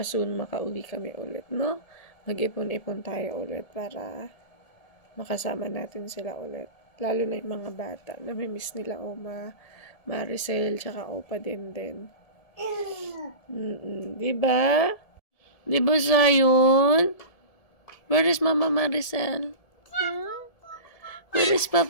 soon makauwi kami ulit, no? Mag-ipon-ipon tayo ulit para makasama natin sila ulit. Lalo na yung mga bata. Namimiss nila Oma, Maricel, tsaka Opa din. Diba? Diba, Zion? Where is Mama Maricel? Where is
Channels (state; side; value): late; right; 1.7 ms